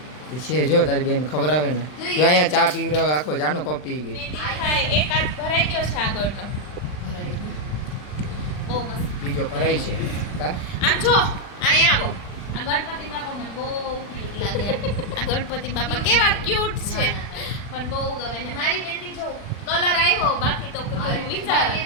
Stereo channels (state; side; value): late; right; 40 ms